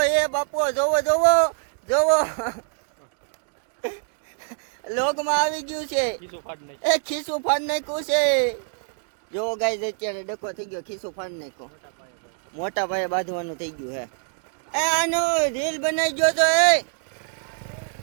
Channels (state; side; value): silent; left; digital silence